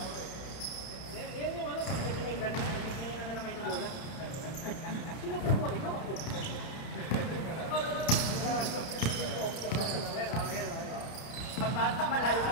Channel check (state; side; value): late; right; 31 ms